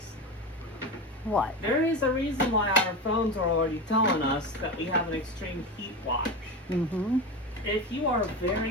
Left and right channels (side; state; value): both; normal; correlation 0.23